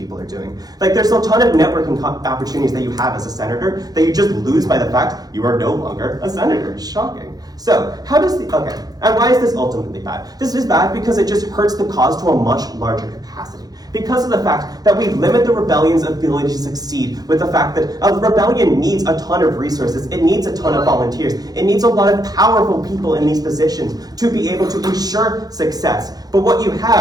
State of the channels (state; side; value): late; left; 0.19 ms